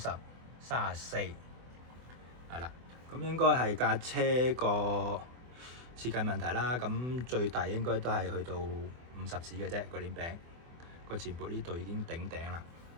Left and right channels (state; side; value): late; left; 24 ms